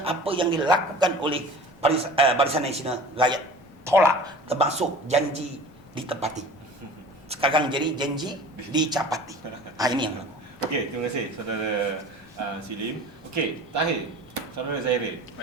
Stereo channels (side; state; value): both; normal; correlation 0.41